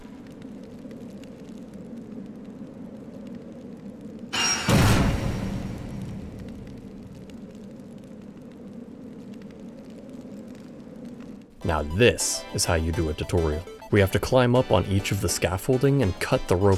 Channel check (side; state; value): both; identical; correlation 1.00